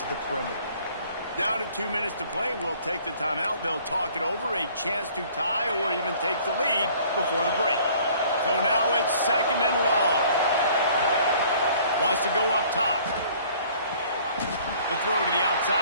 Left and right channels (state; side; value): inverted; both; correlation -0.55